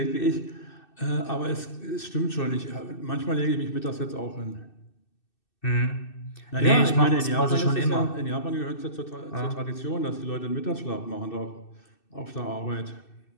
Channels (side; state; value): right; late; 2.6 ms